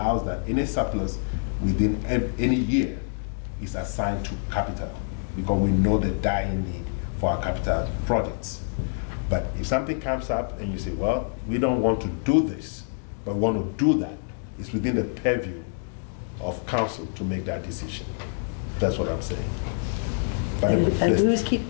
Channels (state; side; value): silent; right; digital silence